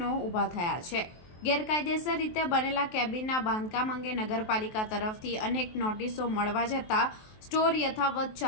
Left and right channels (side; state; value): right; late; 23 ms